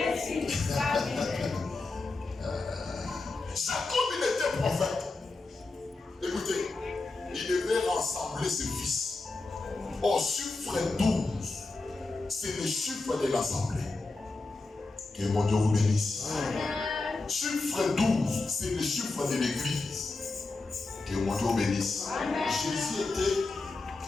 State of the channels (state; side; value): quieter; right; 3.5 dB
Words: Jacob, il était prophète. Écoutez, il devait rassembler ses fils. Au chiffre 12, c'est le chiffre de l'assemblée. Que mon Dieu vous bénisse. Chiffre 12, c'est le chiffre de l'église. Que mon Dieu vous bénisse. Jésus était,